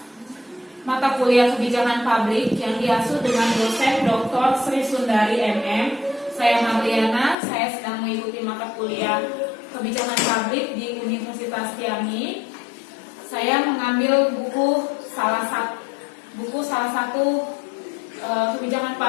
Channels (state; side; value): drops out; right; at 7.4 s